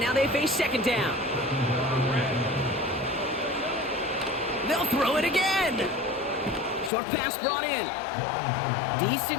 they face 2nd down. They'll throw it again. Short pass brought in.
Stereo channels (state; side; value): drops out; right; at 6.9 s